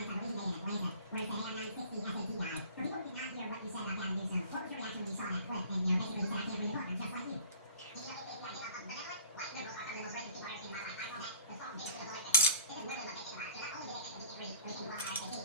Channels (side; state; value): both; inverted; correlation -0.45